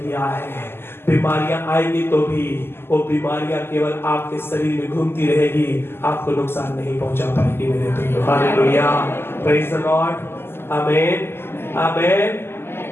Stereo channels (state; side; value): late; right; 0.12 ms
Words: है, बीमारियां आएंगी तो भी वो बीमारियां केवल आपके शरीर में घूमती रहेगी, आपको नुकसान नहीं पहुंचा पाएगी मेरे प्रियो। हालेलुया, प्रेज़ द लॉर्ड, आमीन, आमीन।